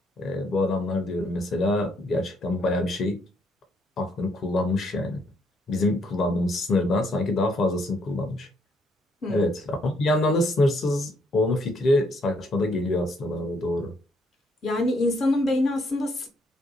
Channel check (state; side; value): normal; both; correlation 0.71